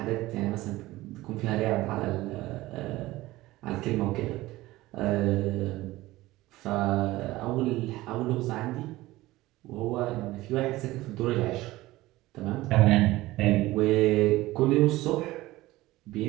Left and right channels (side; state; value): left; quieter; 18.0 dB